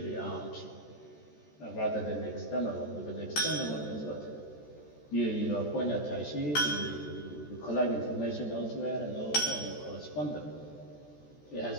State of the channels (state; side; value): late; right; 14 ms